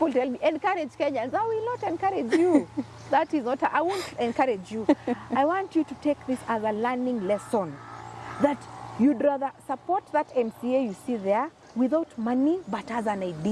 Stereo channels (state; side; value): identical; both; correlation 1.00